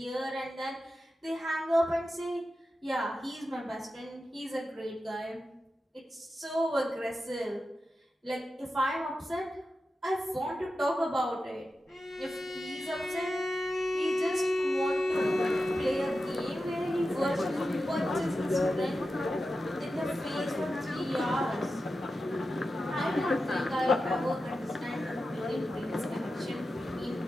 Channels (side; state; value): both; normal; correlation 0.91